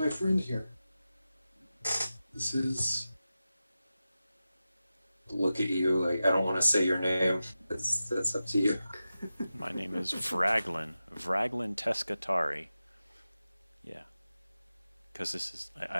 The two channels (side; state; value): both; inverted; correlation -0.93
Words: friend here. This is. Look at you, like I don't want to say your name. That's up to you. My name is Vraglin Teskatari. Yeah, because this is